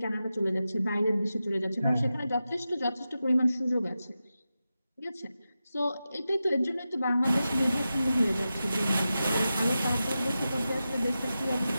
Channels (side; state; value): both; inverted; correlation -0.92